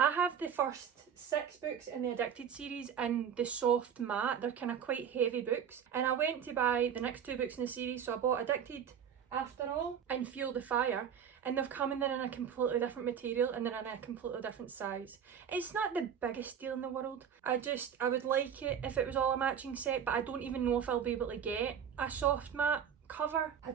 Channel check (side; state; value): left; quieter; 8.1 dB